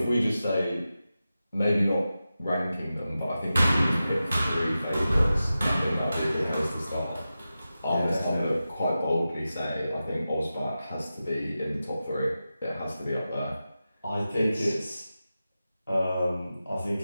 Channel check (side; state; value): both; inverted; correlation -0.93